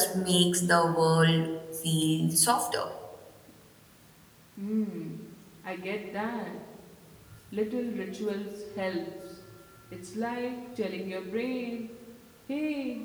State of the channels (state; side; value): identical; both; correlation 1.00